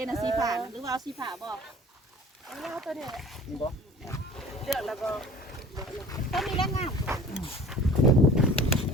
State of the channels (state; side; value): normal; both; correlation 0.45